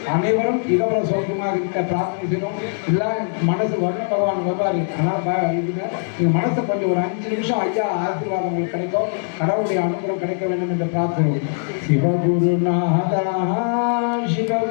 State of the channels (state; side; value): silent; right; digital silence